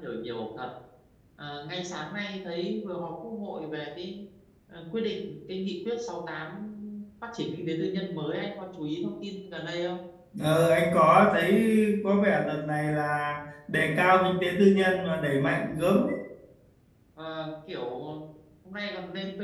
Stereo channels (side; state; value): both; identical; correlation 1.00